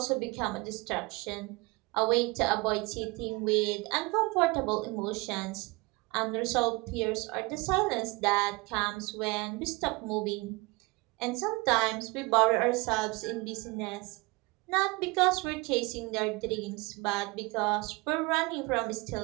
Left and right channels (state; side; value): quieter; left; 25.7 dB